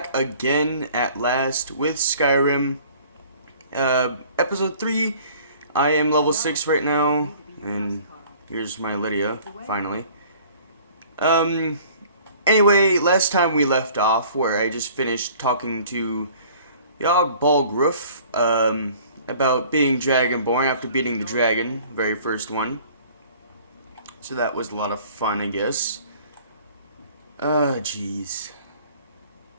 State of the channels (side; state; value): both; inverted; correlation -0.51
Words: again at last with Skyrim, episode 3. I am level 6 right now, and here's my Lydia, finally. Anyway, last time we left off, where I just finished talking to Yog Balgruf, about being Dragonborn after beating the dragon, very first one. So that was a lot of fun, I guess. Jeez.